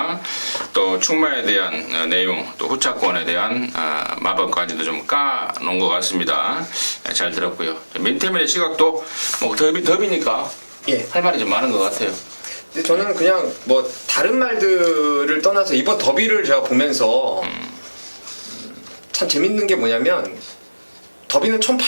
또 충마에 대한 내용 또 후차권에 대한 마법까지도 좀 까놓은 것 같습니다. 잘 들었고요. 민태민의 시각도 뭐 더비니까 예. 할 말이 좀 많은 것 같아요. 근데 저는 그냥 뭐 다른 말들을 떠나서 이번 더비를 제가 보면서 참 재밌는 게 뭐냐면 더비는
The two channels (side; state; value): both; inverted; correlation -1.00